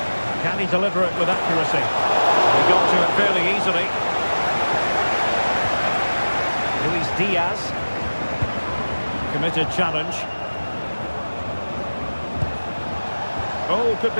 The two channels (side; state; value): both; inverted; correlation -1.00